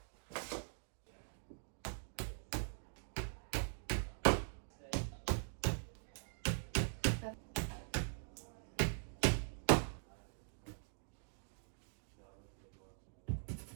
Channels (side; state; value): left; silent; digital silence